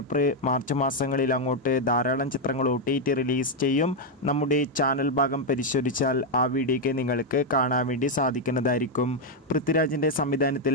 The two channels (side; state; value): both; normal; correlation 0.02